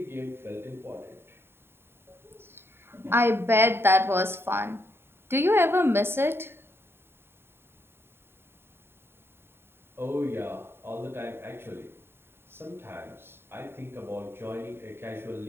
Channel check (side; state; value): left; late; 0.11 ms